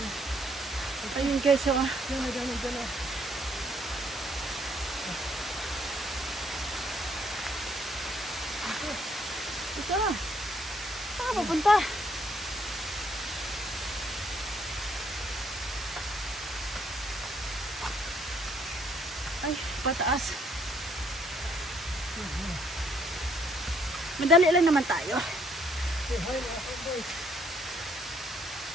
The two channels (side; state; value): both; normal; correlation 0.67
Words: Ayun guys, oh. Ito na. Saan ka papunta? Ay, pataas. Madali lang naman tayo.